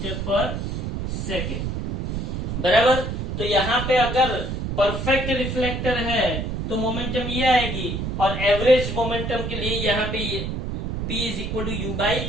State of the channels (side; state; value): right; noise; rumble, 3 dB below the sound